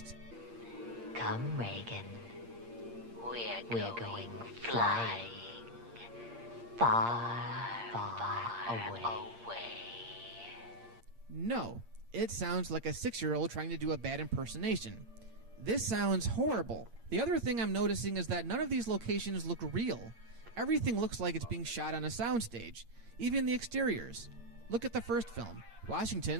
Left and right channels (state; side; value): late; left; 8.6 ms